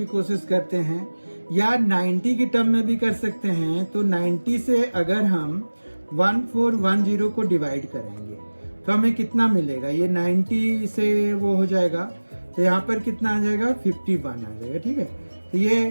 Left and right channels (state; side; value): inverted; both; correlation -1.00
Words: कोशिश करते हैं, या 90 की टर्म में भी कर सकते हैं। तो 90 से अगर हम 1410 को डिवाइड करेंगे तो हमें कितना मिलेगा, ये 90 से वो हो जाएगा, तो यहाँ पर कितना आ जाएगा, 51 आ जाएगा, ठीक है। तो